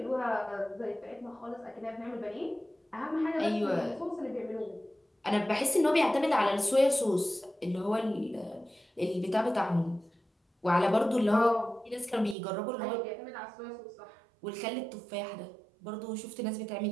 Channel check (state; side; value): drops out; left; at 12.4 s